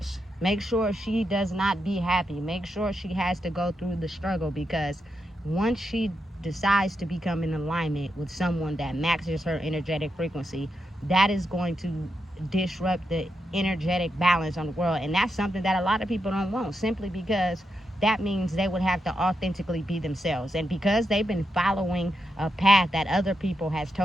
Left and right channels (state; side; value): normal; both; correlation 0.85